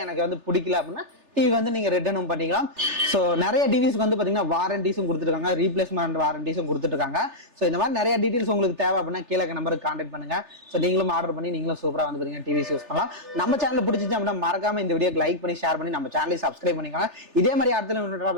எனக்கு வந்து பிடிக்கல அப்படின்னா டிவி வந்து நீங்க ரிட்டர்னும் பண்ணிக்கலாம். ஸோ நிறைய டிவிஸ்க்கு வந்து பாத்தீங்கன்னா வாரண்டிஸும் கொடுத்துருக்காங்க, ரீப்ளேஸ்மெண்ட் வாரண்டிஸும் கொடுத்துருக்காங்க. ஸோ இந்த மாதிரி நிறைய டீடைல்ஸ் உங்களுக்கு தேவை அப்படின்னா கீழே நம்பருக்கு கான்டாக்ட் பண்ணுங்க. ஸோ நீங்களும் ஆர்டர் பண்ணி நீங்களும் சூப்பரா வந்து பாத்தீங்கன்னா டிவிஸ் யூஸ் பண்ணலாம். நம்ம சேனல் பிடிச்சிச்சு அப்படின்னா மறக்காம இந்த வீடியோக்கு லைக் பண்ணி ஷேர் பண்ணி நம்ம சேனலை சப்ஸ்கிரைப் பண்ணிக்கோங்க. இதே மாதிரி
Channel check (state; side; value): late; left; 3.4 ms